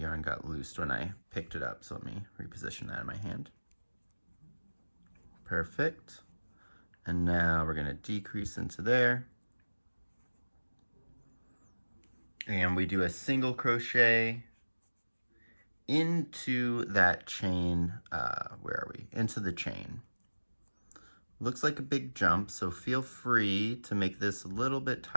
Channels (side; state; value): both; inverted; correlation -1.00